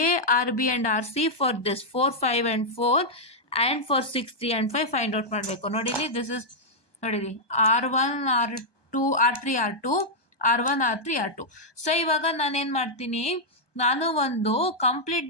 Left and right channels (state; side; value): late; right; 1.2 ms